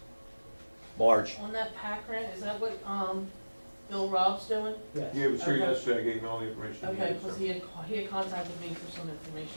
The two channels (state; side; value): inverted; both; correlation -1.00